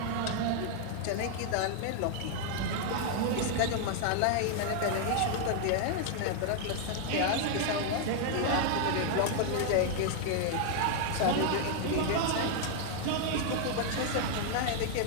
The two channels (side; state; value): both; different; correlation 0.00